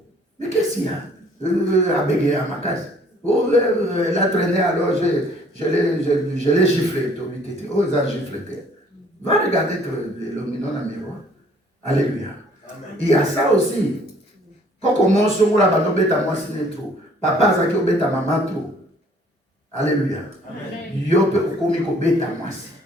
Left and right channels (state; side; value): normal; both; correlation 0.58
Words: Mais qu'est-ce qu'il y a? Abege à ma case. Oh, elle a traîné alors je l'ai giflé. Oh, ça giflé. Va regarder le minon dans le miroir. Alléluia. Amen. Il y a ça aussi. Quand on mange sur la bande, on moi siné trop. Papa, ça qui obéit à maman trop. Alléluia. Yo peut commis obéit à moi si.